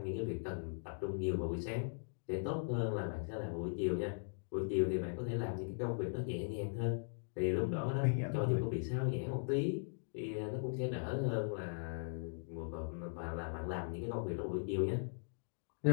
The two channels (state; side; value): silent; right; digital silence